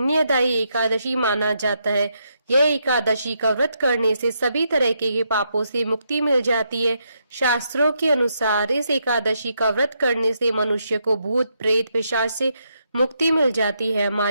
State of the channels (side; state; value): both; inverted; correlation -0.79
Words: एकादशी माना जाता है। यह एकादशी का व्रत करने से सभी तरह के पापों से मुक्ति मिल जाती है। शास्त्रों के अनुसार इस एकादशी का व्रत करने से मनुष्य को भूत प्रेत पिशाच से मुक्ति मिल जाती है।